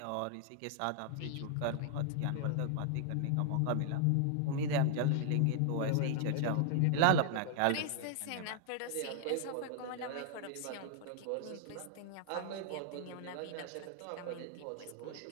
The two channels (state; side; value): different; both; correlation 0.00